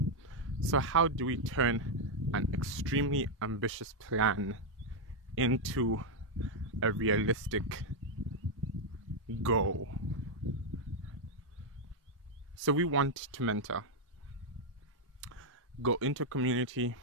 So how do we turn an extremely ambitious plan into a realistic goal? So we want to mentor, go into a community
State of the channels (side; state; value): both; normal; correlation -0.01